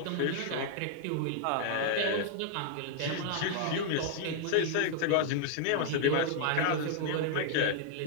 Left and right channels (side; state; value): both; different; correlation 0.00